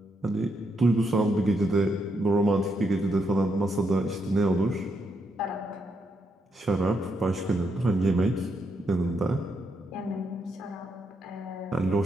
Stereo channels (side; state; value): both; normal; correlation 0.79